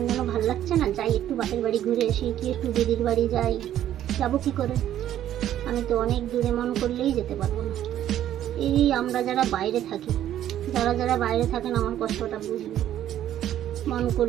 যেন ভাল লাগছে না, যাই একটু বাপের বাড়ি ঘুরে আসি কি একটু দিদির বাড়ি যাই, যাবো কি করে? আমি তো অনেক দূরে মন করলেই যেতে পারবো না। এই আমরা যারা বাইরে থাকি, যারা বাইরে থাকেন আমার কষ্টটা বুঝবে। মন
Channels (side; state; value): left; quieter; 11.7 dB